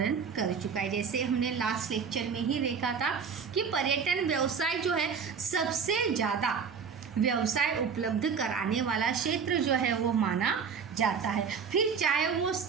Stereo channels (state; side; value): quieter; left; 6.2 dB